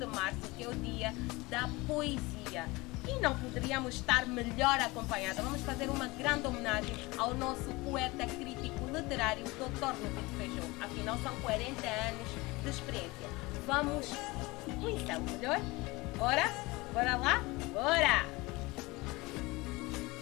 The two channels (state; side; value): quieter; right; 22.7 dB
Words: março, que é o dia da poesia. E não poderíamos estar melhor acompanhados. Vamos fazer uma grande homenagem ao nosso poeta crítico literário, Dr. Lupito Feijó. Afinal, são 40 anos de experiência. Vamos conhecê-lo melhor? Bora? Bora lá? Bora!